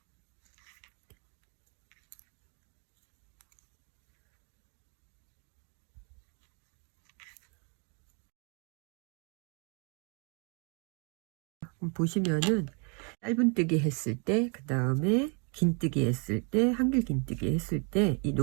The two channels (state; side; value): quieter; left; 36.1 dB